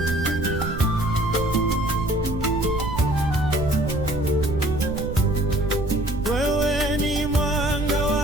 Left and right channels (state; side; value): noise; right; rumble, 6 dB below the sound